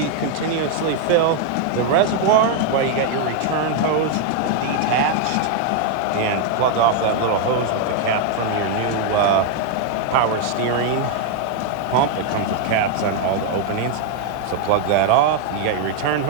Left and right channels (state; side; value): different; both; correlation 0.00